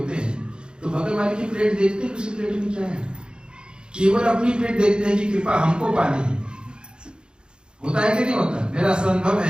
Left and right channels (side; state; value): left; late; 0.050 ms